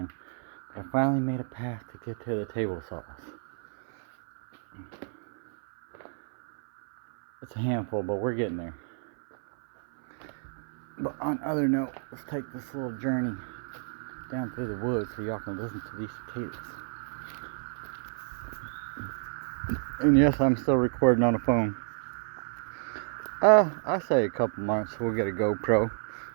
But I finally made a path to get to the table saws. It's a handful, but we're getting there. But on other note, let's take this little journey down through the woods so y'all can listen to these cicadas. And yes, I'm still recording on the phone. I say a couple months we'll get a GoPro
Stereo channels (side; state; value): left; silent; 58 dB below the other